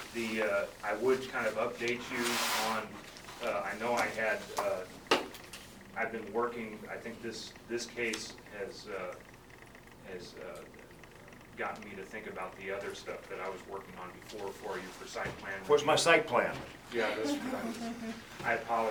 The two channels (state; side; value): identical; both; correlation 1.00